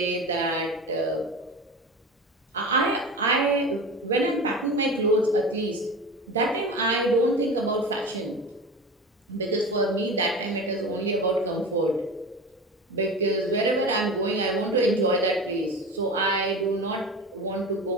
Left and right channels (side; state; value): both; normal; correlation 0.31